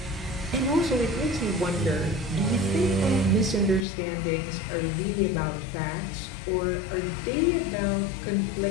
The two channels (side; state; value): right; drops out; at 3.9 s